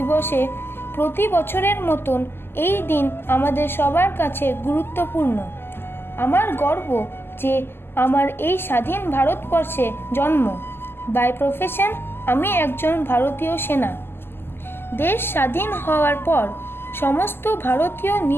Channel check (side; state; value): right; late; 0.11 ms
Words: প্রতি বছরের মতন এই দিন আমাদের সবার কাছে গুরুত্বপূর্ণ। আমার গর্ব যে আমার এই স্বাধীন ভারতবর্ষে জন্ম। বাই প্রফেশন আমি একজন ভারতীয় সেনা। দেশ স্বাধীন হওয়ার পর সমস্ত ভারতীয়